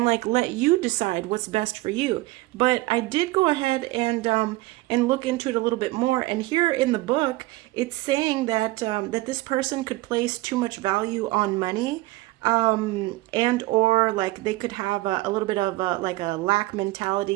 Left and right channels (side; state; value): left; quieter; 19.6 dB